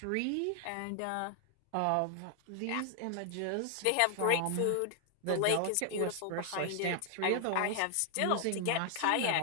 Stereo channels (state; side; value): different; both; correlation 0.00